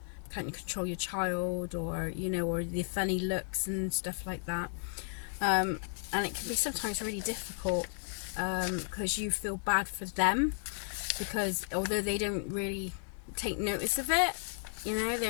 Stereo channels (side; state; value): right; silent; 55 dB below the other